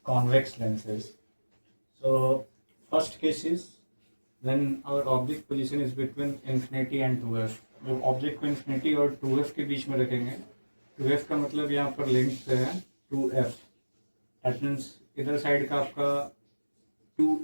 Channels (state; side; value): inverted; both; correlation -1.00